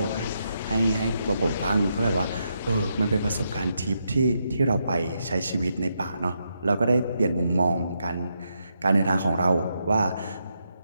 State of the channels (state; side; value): inverted; both; correlation -0.81